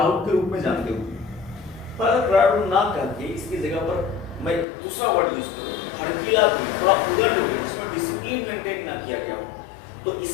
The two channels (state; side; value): drops out; right; at 4.7 s